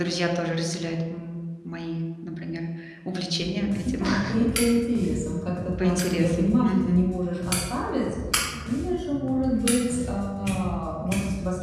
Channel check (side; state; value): both; identical; correlation 1.00